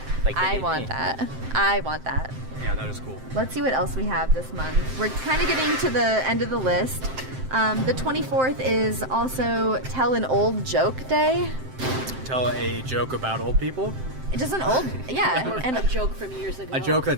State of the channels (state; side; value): late; left; 7.7 ms